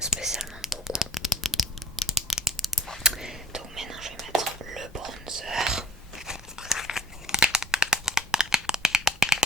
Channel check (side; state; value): both; normal; correlation 0.53